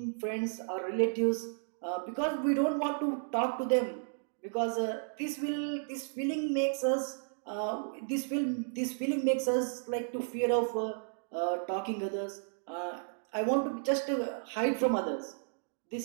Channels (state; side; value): silent; left; digital silence